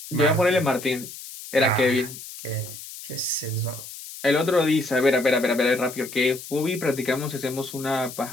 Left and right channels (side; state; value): left; noise; hiss, 13 dB below the sound